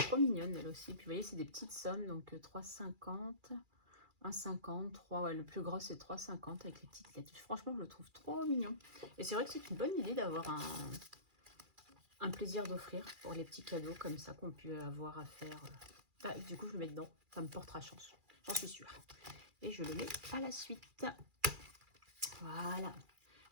mignonne elle aussi, puis vous voyez c'est des petites sommes, donc 3,50 1,50, 3, ouais, le plus gros c'est 3,50 avec les petites lettres. Franchement, je le trouve trop mignon. Et c'est vrai que c'est une bonne idée d'avoir un plaisir d'offrir pour les petits cadeaux comme ça qu'on peut avoir à faire. Du coup, je le mets dedans. Ça me portera chance. J'en suis sûre. Et je le mets à la suite. Voilà.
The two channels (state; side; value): late; left; 2.4 ms